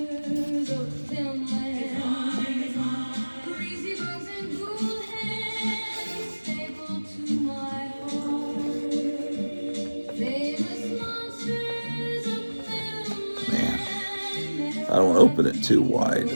Man, I don't want to open it too wide.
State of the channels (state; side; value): inverted; both; correlation -1.00